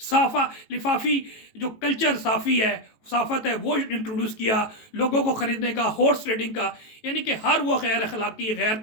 لفافی جو کلچر صافی ہے، صافت ہے وہ انٹروڈیوس کیا، لوگوں کو خریدنے کا، ہارس ٹریڈنگ کا، یعنی کہ ہر وہ غیر اخلاقی، غیر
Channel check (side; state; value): right; late; 18 ms